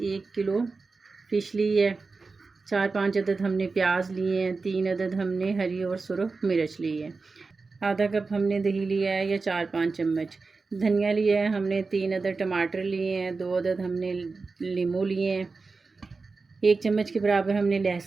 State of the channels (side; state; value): left; quieter; 4.1 dB